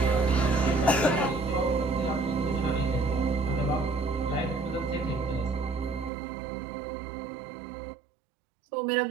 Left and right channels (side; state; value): left; drops out; at 6.1 s